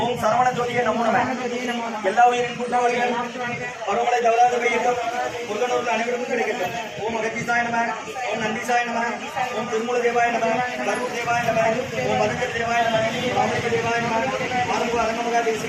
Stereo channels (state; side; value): identical; both; correlation 1.00